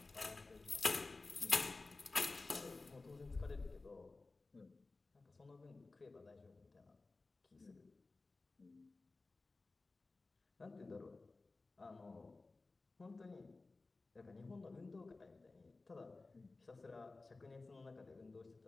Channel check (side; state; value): right; quieter; 3.5 dB